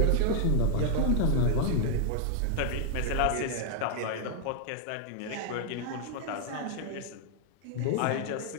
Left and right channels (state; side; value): different; both; correlation 0.00